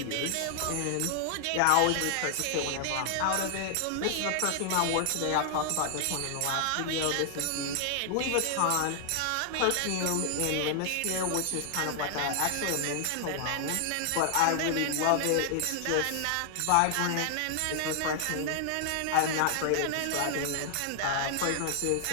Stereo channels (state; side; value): different; both; correlation 0.00